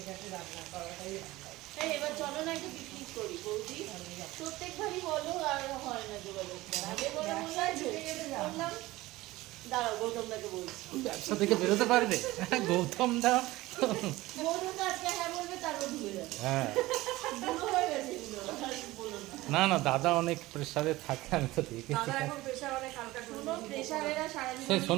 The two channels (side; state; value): left; quieter; 18.6 dB